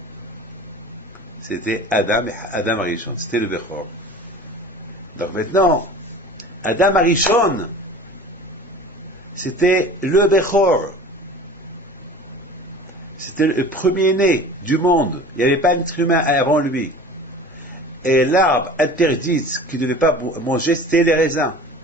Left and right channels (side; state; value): both; normal; correlation 0.40